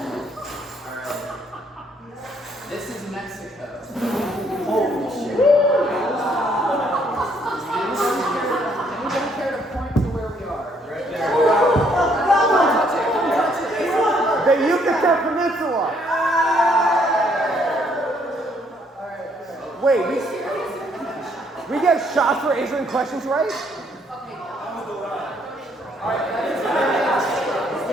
Alright. This is Mexico. Holy shit. Anybody care to point to where we are? Right there. The Yucatan Peninsula. Wait, we get shots for answering questions right? Alright, that is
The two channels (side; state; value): both; normal; correlation 0.67